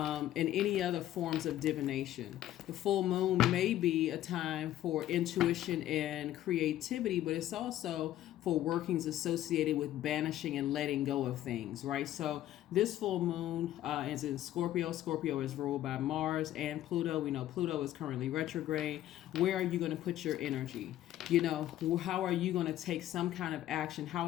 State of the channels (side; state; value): right; quieter; 13.2 dB